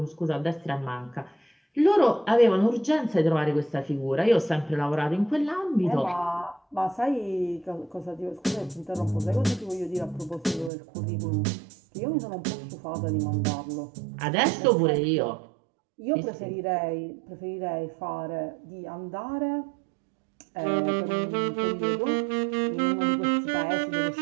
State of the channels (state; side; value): drops out; left; at 10.7 s